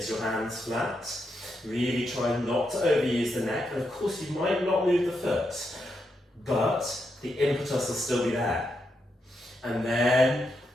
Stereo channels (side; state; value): both; normal; correlation 0.83